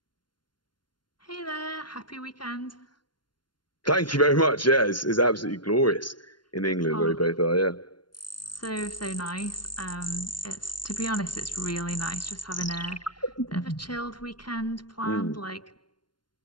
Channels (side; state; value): right; late; 0.72 ms